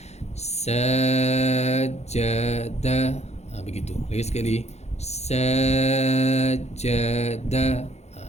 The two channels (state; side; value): late; right; 0.32 ms